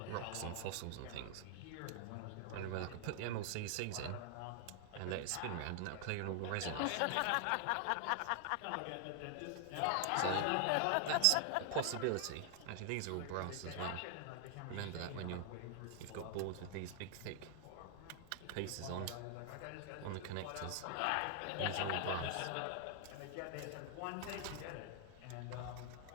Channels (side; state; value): both; different; correlation 0.00